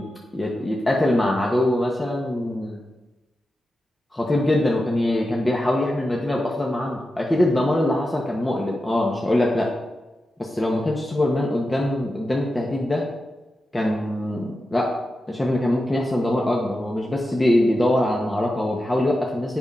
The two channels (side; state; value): both; normal; correlation 0.90